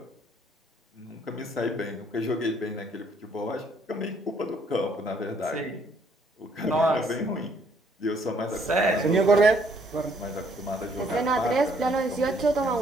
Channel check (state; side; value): normal; both; correlation 0.65